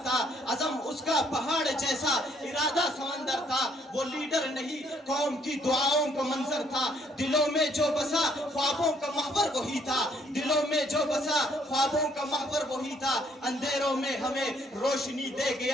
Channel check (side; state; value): both; normal; correlation 0.67